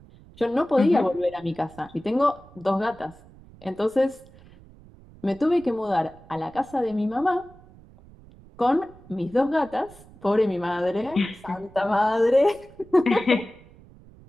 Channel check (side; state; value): right; noise; rumble, 23 dB below the sound